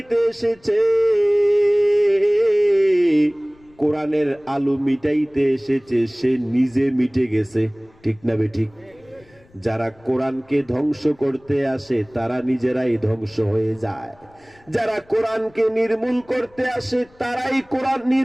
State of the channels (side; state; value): left; noise; rumble, 30 dB below the sound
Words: এসেছে, কোরআনের আলো মিটাইতে এসেছে, সে নিজে মিটে গেছে, ঠিক না বেঠিক? যারা কোরআনকে ধ্বংস করতে আসে তারা নিজেরাই ধ্বংস হয়ে যায়, যারা কোরআনকে নির্মূল করতে আসে তারাই কোরআন